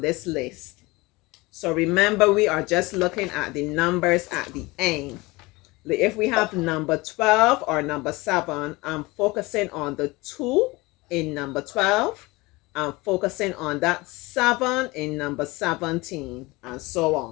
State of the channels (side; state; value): right; quieter; 22.8 dB